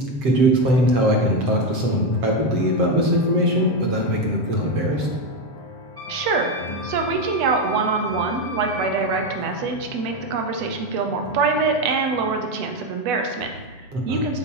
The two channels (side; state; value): left; late; 7.7 ms